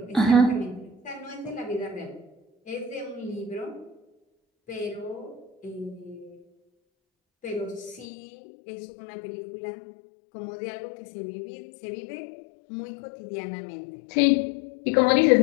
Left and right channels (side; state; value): right; drops out; at 8.1 s